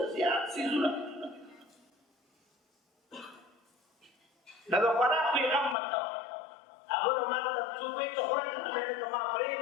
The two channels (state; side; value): drops out; right; at 5.8 s